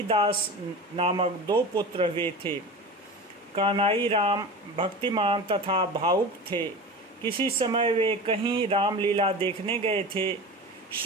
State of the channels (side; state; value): both; normal; correlation 0.31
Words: नामक 2 पुत्र हुए थे। कानाई राम भक्तिमान तथा भावुक थे। किसी समय वे कहीं रामलीला देखने गए थे।